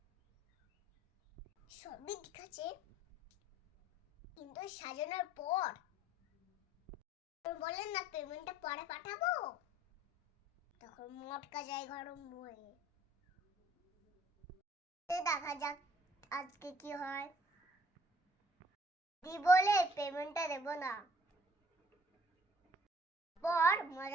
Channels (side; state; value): both; normal; correlation 0.57